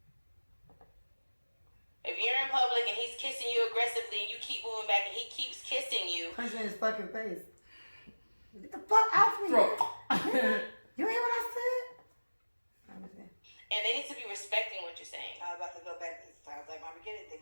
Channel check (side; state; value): both; inverted; correlation -1.00